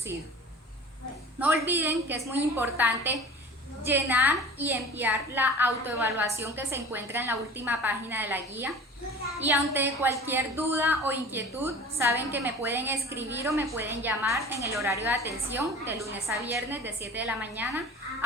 No olviden que es muy importante llenar y enviar la autoevaluación que se encuentra en la última página de la guía. Y ante cualquier duda o inquietud, saben que me pueden escribir o me pueden llamar en el horario de atención de lunes a viernes de 7 de la mañana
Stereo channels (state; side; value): normal; both; correlation 0.40